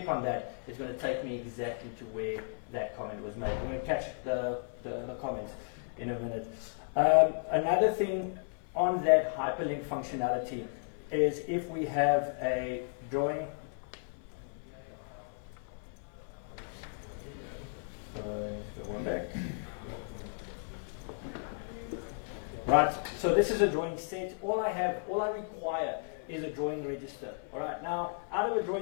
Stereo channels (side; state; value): right; silent; 55 dB below the other